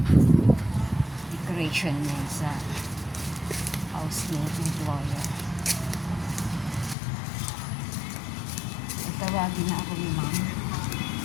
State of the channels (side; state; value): right; drops out; at 7.0 s